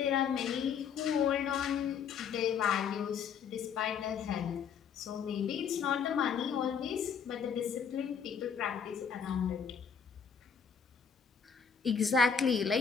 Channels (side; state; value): right; quieter; 6.9 dB